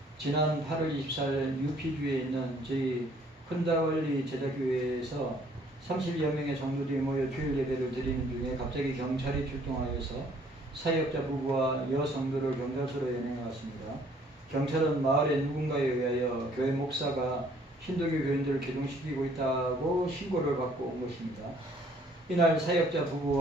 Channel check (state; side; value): normal; both; correlation 0.61